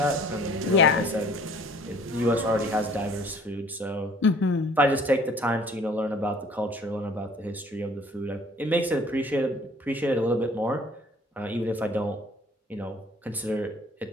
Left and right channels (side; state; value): both; normal; correlation 0.54